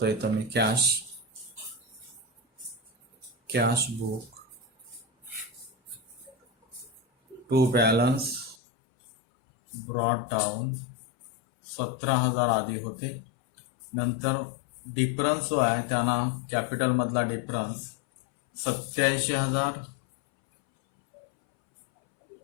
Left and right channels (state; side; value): drops out; right; at 8.6 s